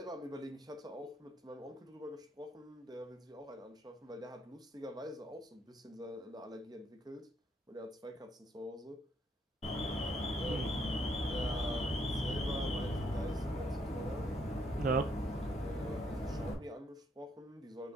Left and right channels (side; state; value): both; normal; correlation 0.72